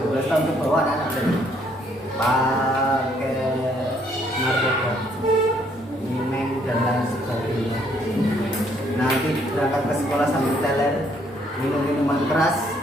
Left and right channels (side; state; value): both; normal; correlation 0.67